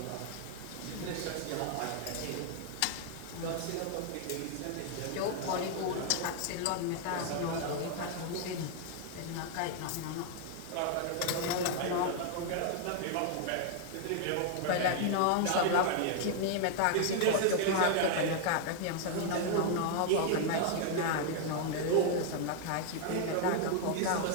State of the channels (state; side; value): different; both; correlation 0.00